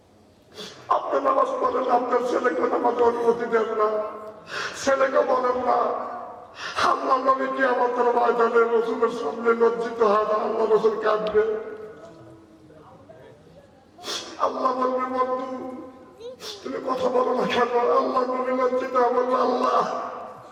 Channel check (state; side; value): identical; both; correlation 1.00